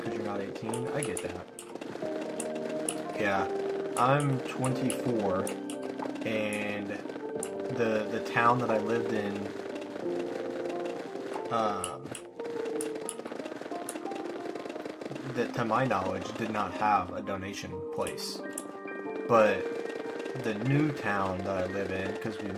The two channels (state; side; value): identical; both; correlation 1.00